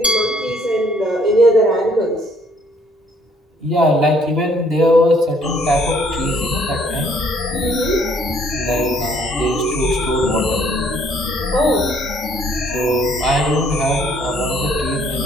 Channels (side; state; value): both; normal; correlation 0.64